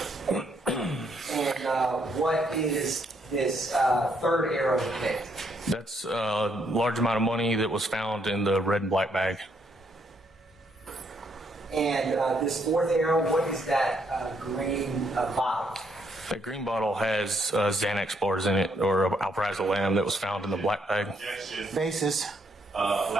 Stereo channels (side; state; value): both; normal; correlation 0.73